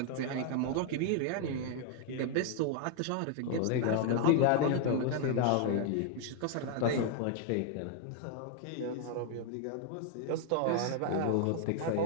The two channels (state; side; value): different; both; correlation 0.00